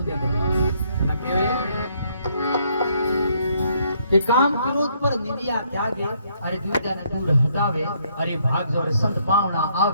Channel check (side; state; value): both; inverted; correlation -0.69